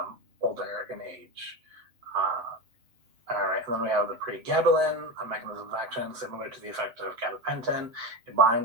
older in age. All right, and then we have the pregabalin, a mechanism of action similar to the effect of gabapentin. It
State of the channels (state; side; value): late; left; 8.0 ms